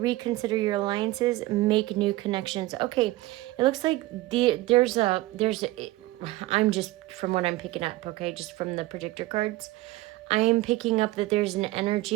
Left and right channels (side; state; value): left; quieter; 18.6 dB